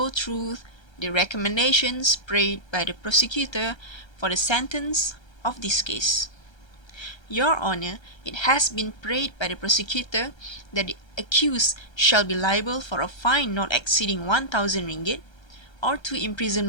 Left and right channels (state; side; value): late; right; 1.3 ms